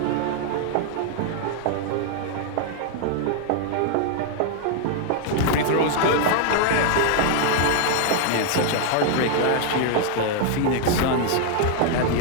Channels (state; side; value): different; both; correlation 0.00